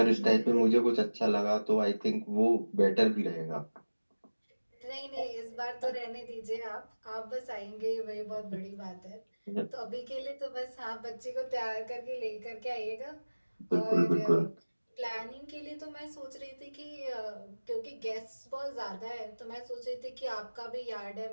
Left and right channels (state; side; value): inverted; both; correlation -1.00